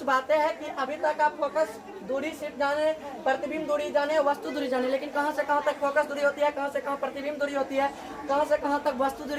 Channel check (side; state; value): both; identical; correlation 1.00